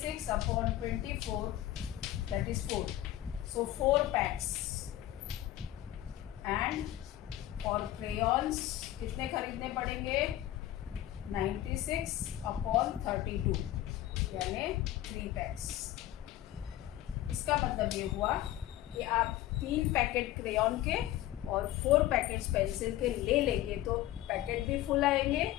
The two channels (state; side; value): quieter; right; 14.1 dB